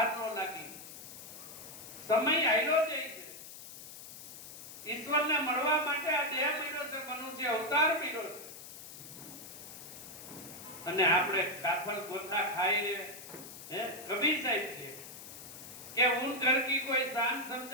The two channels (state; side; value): noise; left; hiss, 13 dB below the sound